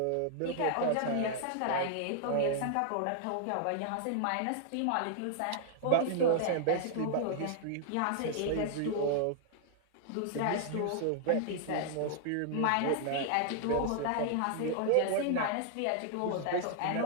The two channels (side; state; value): both; different; correlation -0.01